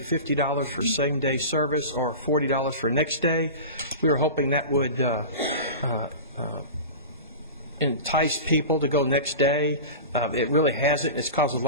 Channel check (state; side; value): inverted; both; correlation -0.31